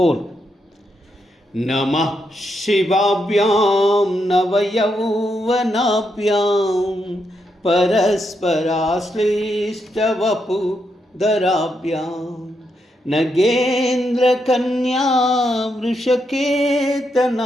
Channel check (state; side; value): normal; both; correlation 0.81